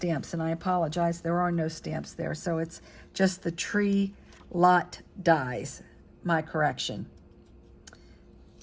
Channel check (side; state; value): both; identical; correlation 1.00